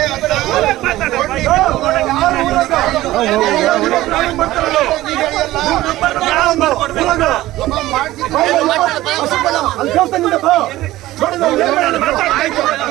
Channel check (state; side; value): quieter; left; 16.3 dB